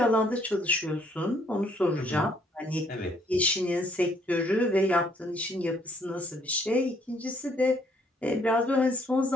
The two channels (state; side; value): normal; both; correlation 0.66